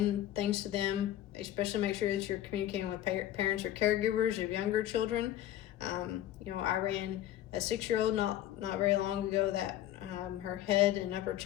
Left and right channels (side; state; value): right; quieter; 12.8 dB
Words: things to them, especially make sure that you're communicating with parents or caregivers of younger children. I ran a 6-year-old not very long ago that her head and upper